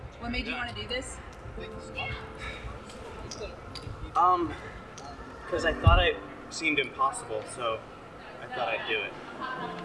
What made you want to do this? Because I thought it seemed impossible, so I thought I'd do it.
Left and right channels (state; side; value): identical; both; correlation 1.00